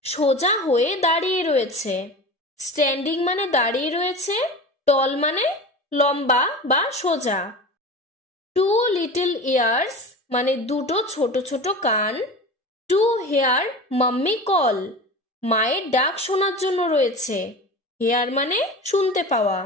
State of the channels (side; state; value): both; normal; correlation 0.32